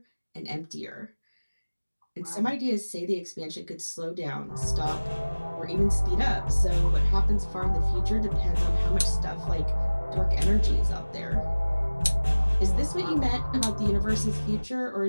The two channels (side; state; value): both; inverted; correlation -1.00